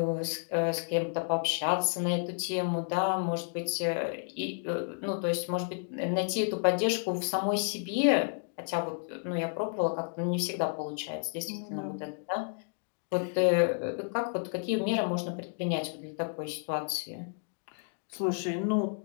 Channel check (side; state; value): right; silent; 57 dB below the other